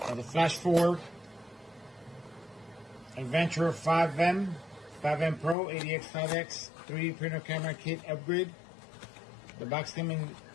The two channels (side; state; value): right; drops out; at 5.6 s